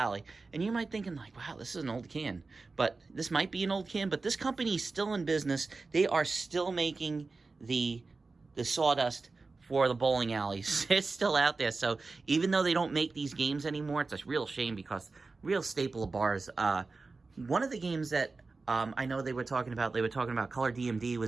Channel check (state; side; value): quieter; left; 3.9 dB